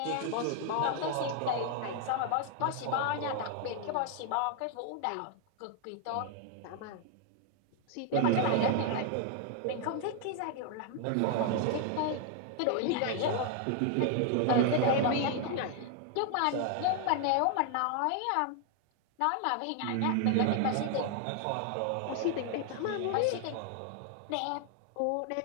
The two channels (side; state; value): both; different; correlation 0.00